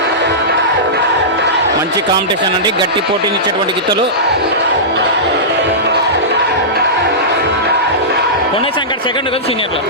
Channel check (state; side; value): normal; both; correlation -0.17